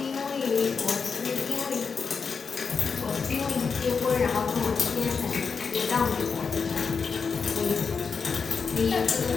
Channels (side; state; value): right; quieter; 5.5 dB